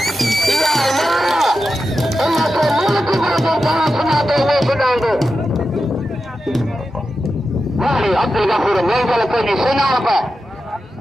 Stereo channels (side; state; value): both; normal; correlation 0.90